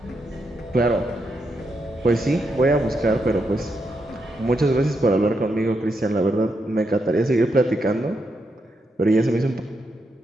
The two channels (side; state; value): both; normal; correlation 0.82